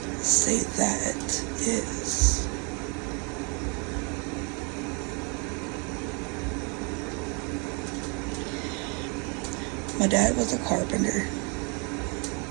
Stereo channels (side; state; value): left; quieter; 33.8 dB